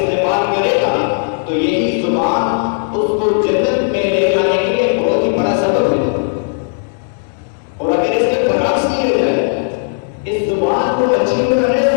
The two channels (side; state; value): right; silent; digital silence